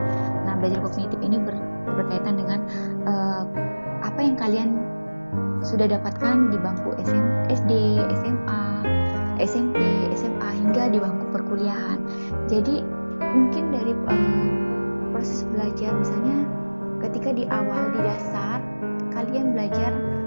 Nah, belajar kognitif ini berkaitan dengan apa yang kalian sudah dapatkan di bangku SD, SMA, SMP, SMA hingga di bangku perkuliahan. Jadi mungkin dari proses belajar, misalnya ketika di awal di dasar kalian belajar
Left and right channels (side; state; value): both; inverted; correlation -1.00